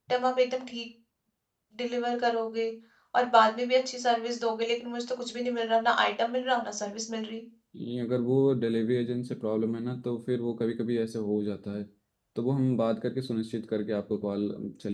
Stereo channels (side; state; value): both; identical; correlation 1.00